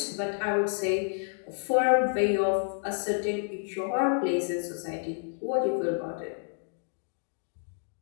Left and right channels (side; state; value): right; silent; digital silence